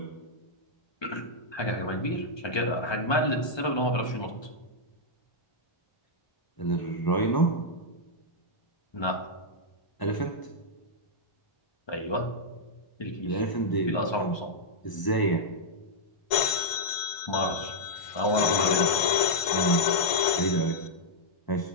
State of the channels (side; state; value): right; late; 1.5 ms